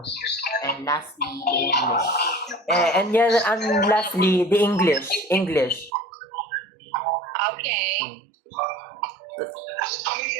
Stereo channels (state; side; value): drops out; left; at 5.9 s